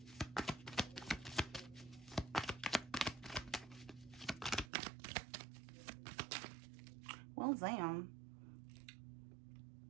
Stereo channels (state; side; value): drops out; left; at 4.7 s